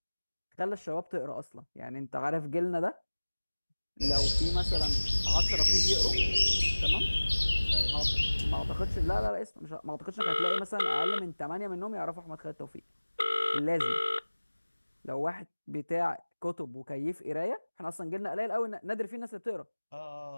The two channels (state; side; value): inverted; both; correlation -1.00